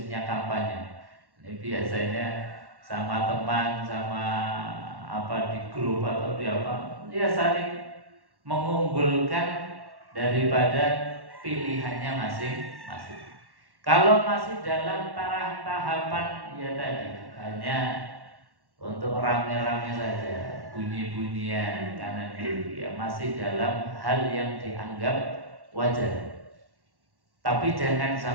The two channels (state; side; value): late; left; 1.1 ms